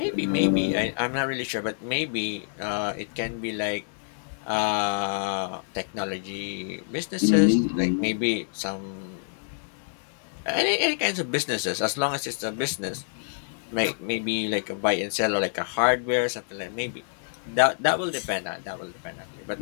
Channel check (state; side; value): silent; right; digital silence